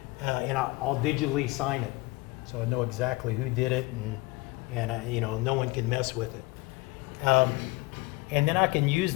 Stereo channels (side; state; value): right; quieter; 21.6 dB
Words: and I'll digitally sign it, so I know exactly who did it, and you know, no one can mess with it. And then I can use